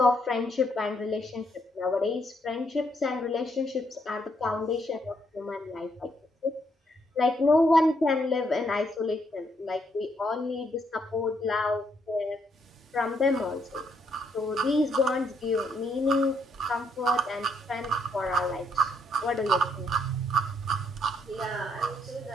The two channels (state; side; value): normal; both; correlation 0.73